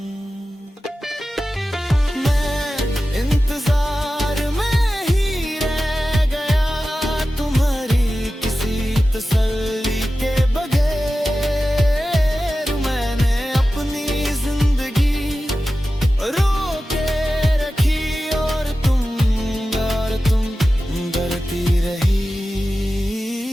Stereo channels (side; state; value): both; normal; correlation 0.94